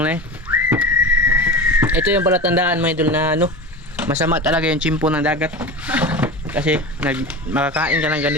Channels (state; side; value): normal; both; correlation 0.29